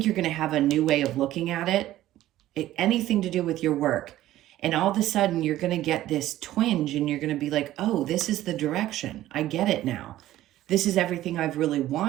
you're going to have a new way of looking at it. Anything to do with your work. And all of a sudden, you're going to get this twinge and you're going to be like, oh, this is the direction. I get it now. This is everything I've really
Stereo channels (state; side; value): quieter; left; 14.4 dB